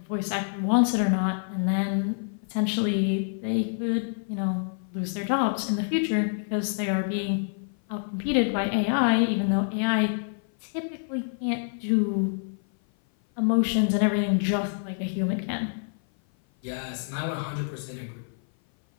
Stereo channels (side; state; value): right; silent; 56 dB below the other